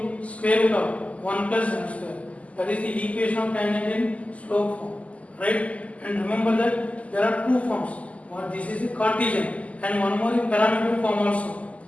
square root of 1 plus m square. That is the equation of tangent in slope form. Right? And remember that there are two forms. One, this is the Cartesian, and one more is parametric form also.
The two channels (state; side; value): late; right; 0.068 ms